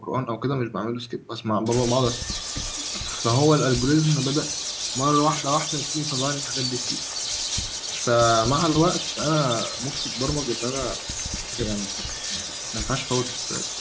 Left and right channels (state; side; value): identical; both; correlation 1.00